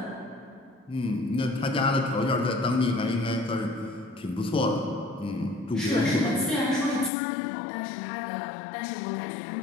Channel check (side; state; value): right; drops out; at 7.1 s